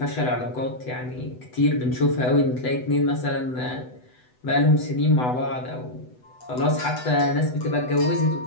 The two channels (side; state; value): right; late; 8.0 ms